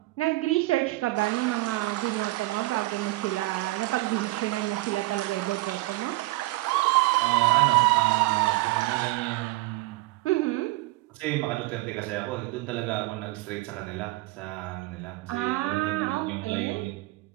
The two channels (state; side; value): quieter; left; 20.8 dB